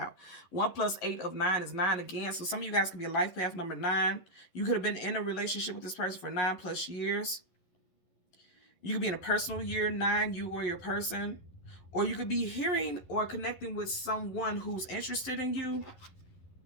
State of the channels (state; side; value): late; right; 11 ms